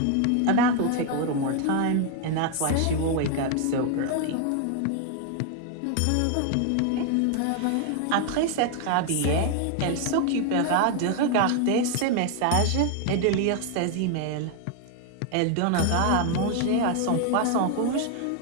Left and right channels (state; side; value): different; both; correlation 0.00